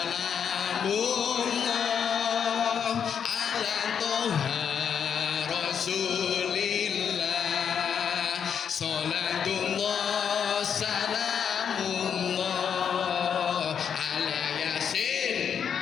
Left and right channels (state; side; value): quieter; right; 7.6 dB